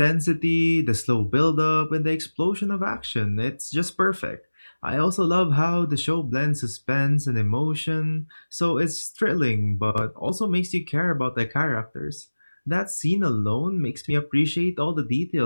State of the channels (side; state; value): both; inverted; correlation -1.00